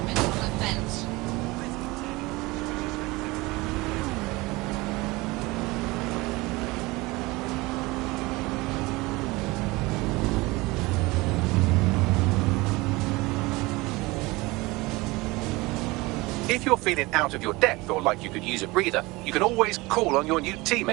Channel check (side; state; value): left; quieter; 22.4 dB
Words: If you're feeling out of your depth or like you could use a breather, you can always call on your new